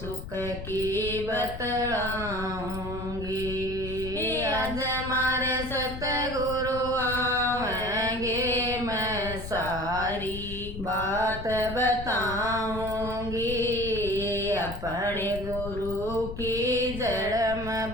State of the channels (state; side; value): noise; left; rumble, 9 dB below the sound